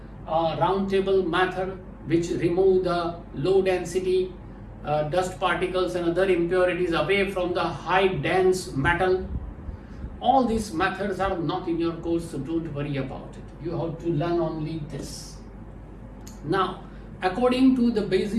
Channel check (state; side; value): identical; both; correlation 1.00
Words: round table method, which remove the low density dust particles and other impurities away from the high dense metal. All these methods are not in your course, so don't worry about it. You have to learn only this. Now, according to the